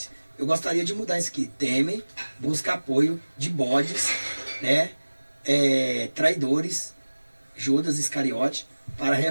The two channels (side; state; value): both; inverted; correlation -1.00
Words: Eu gostaria de mudar isso aqui. Temer busca apoio de bodes, né, traidores, Judas Iscariote, para a